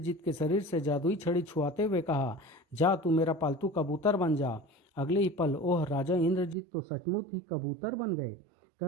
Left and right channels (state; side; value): drops out; left; at 6.6 s